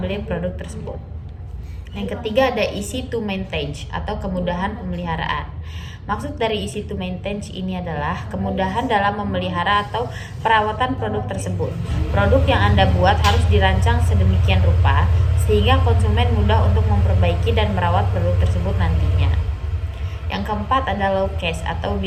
produk tersebut. Yang ketiga ada easy to maintain atau kemudahan pemeliharaan. Maksud dari easy to maintain ini adalah kemudahan dalam memelihara atau perawatan produk tersebut. Produk yang Anda buat harus dirancang sedemikian rupa sehingga konsumen mudah untuk memperbaiki dan merawat produk tersebut nantinya. Yang keempat ada low cost atau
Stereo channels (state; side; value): identical; both; correlation 1.00